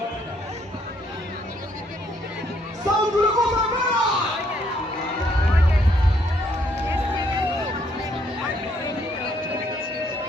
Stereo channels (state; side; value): normal; both; correlation 0.69